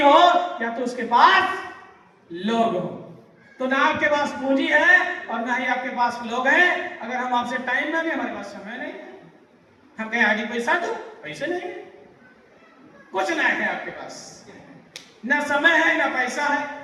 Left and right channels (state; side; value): identical; both; correlation 1.00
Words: या तो उसके पास लोग हो। तो ना आपके पास पूंजी है और ना ही आपके पास लोग हैं। अगर हम आपसे टाइम मांगे, हमारे पास समय नहीं है। हम कहें आगे पैसा दो, पैसे नहीं है, कुछ ना है आपके पास, ना समय है ना पैसा है,